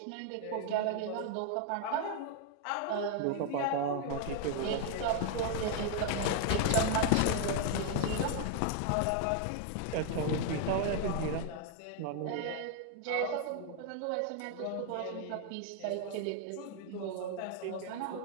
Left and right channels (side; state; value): both; different; correlation 0.00